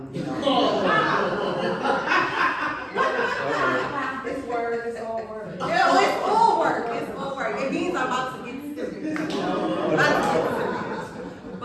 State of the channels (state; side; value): identical; both; correlation 1.00